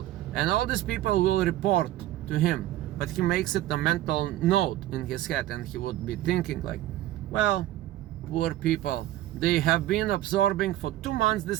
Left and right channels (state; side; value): quieter; left; 14.4 dB